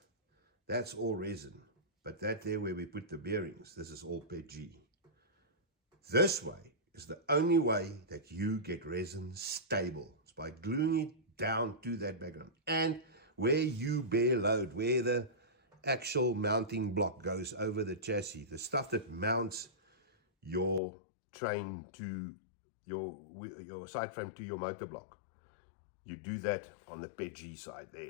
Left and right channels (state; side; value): drops out; right; at 20.8 s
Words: that's all resin. But that there where we put the bearings, this is all PG. This way is the only way that you get resin stable. It's by gluing it down to that background. And where you bear load, where the actual mounting block goes over the chassis, the stuff that mounts your train to your side frame to your motor block, you do that on the PEG side